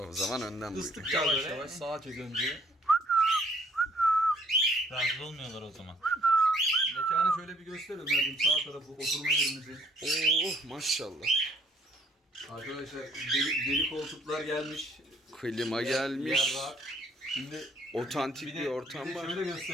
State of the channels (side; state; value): both; normal; correlation 0.63